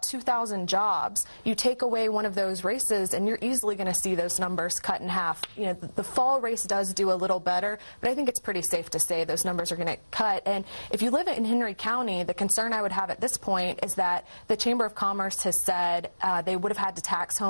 2,000 jobs. You take away one of those races and you're easily going to see those numbers cut in half. You know, the fall race does do a little better, but I think it's pretty safe to say those numbers are going to cut. And if you live in Henry County, the concern I would have at this point is that the Chamber of Commerce has said they would have had to tax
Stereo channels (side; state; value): both; inverted; correlation -1.00